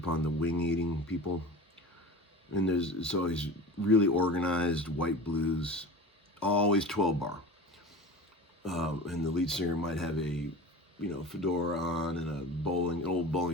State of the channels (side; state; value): both; normal; correlation 0.34